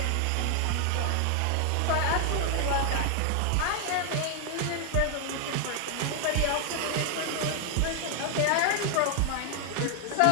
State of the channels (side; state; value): both; different; correlation 0.00